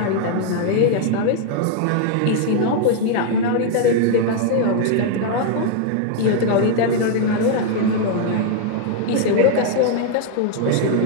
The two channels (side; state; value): both; different; correlation 0.00